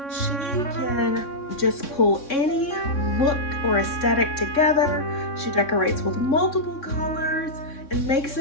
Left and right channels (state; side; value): late; right; 3.6 ms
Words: She can just pull any look or aesthetic together. She decorates with multiple colors and makes